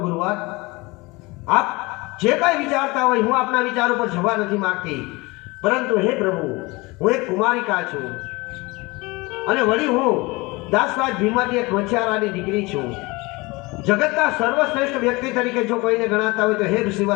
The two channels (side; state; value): right; quieter; 23.8 dB